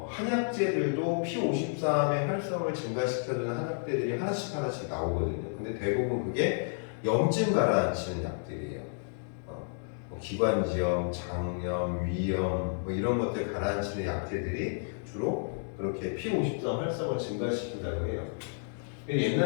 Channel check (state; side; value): silent; right; digital silence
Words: 한약재들도 P53의 활성을 증가시켜주는 한약재들이 하나씩 나오거든요. 근데 대부분 그게 염증 가라앉히는 약들이에요. 뭐 기관지염, 장염, 위염 뭐 이런 것들 가라앉히는 약재들이 주로 그렇게 P53 활성을 증가시킨다고 해요.